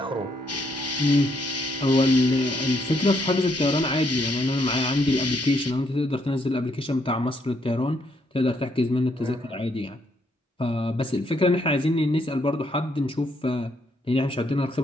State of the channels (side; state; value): both; normal; correlation 0.73